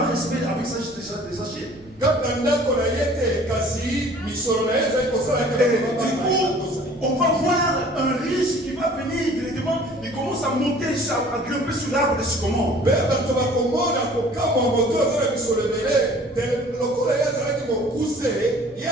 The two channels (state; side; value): normal; both; correlation 0.51